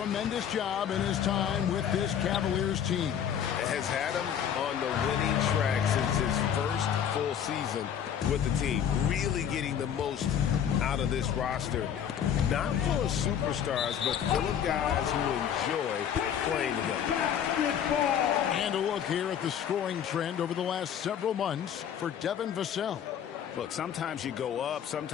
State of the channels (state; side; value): quieter; right; 8.9 dB